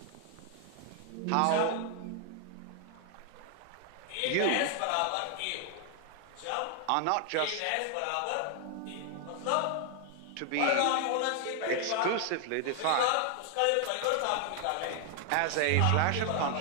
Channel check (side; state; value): both; different; correlation 0.00